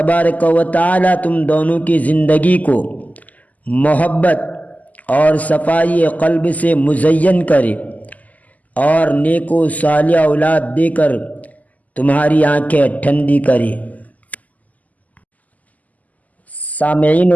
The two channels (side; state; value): right; late; 0.077 ms